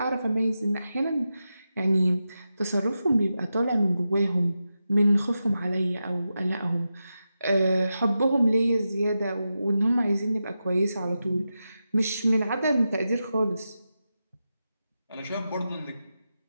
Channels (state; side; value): inverted; both; correlation -0.90